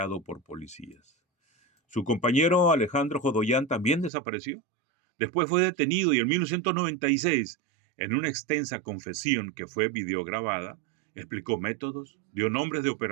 por policías. Su compañero Alejandro Jodoyan también desapareció. Después fue detenido y en 1996, en una extensa confesión que fue videograbada, explicó métodos, dio nombres de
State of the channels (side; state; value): left; drops out; at 4.1 s